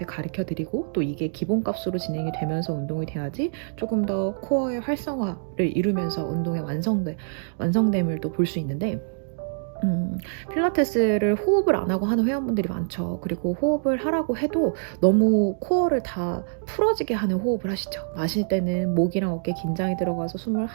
가르쳐 드리고 또 이게 기본값으로 진행이 되면서 운동이 돼야지 조금 더 코어의 활성화를 이루면서 운동의 완성됨을 또 볼 수 있는데 필라테스를 호흡을 안 하고 하는 회원분들이 많죠. 그리고 호흡을 하라고 해도 너무 코어를 다 풀어지게 하는 호흡을 하시죠. 마실 때는 목이랑 어깨 긴장이 들어가서 숨을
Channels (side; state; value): left; silent; digital silence